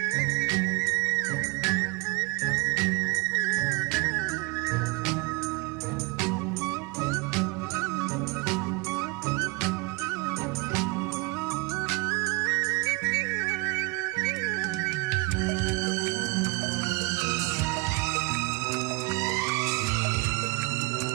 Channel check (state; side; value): quieter; left; 24.9 dB